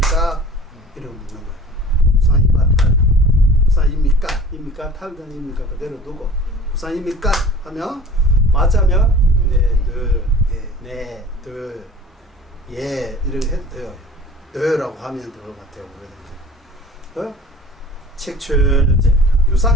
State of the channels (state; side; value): normal; both; correlation 0.43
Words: 이러고 묻는 거예요. 무산입니까? 탈. 무산입니까? 입니까? 탈전입니까? 그대로 두고 무산입니까? 하면 맞자면 네, 둘, 예 이렇게 해도 돼요. 너라고 하면 될 것 같아요. 책 초여제